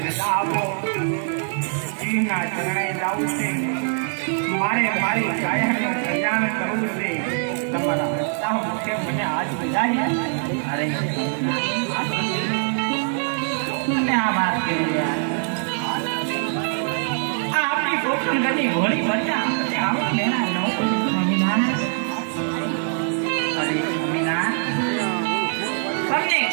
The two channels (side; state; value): left; silent; 63 dB below the other